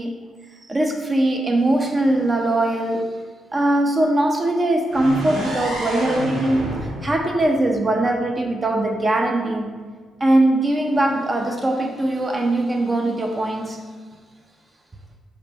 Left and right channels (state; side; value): normal; both; correlation 0.87